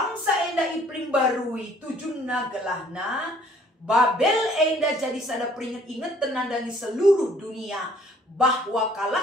enda iprim barui tujunna gelahna. Babel enda jadi sada peringat ingat tenandangi seluruh dunia. Bahwa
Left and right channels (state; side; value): normal; both; correlation 0.58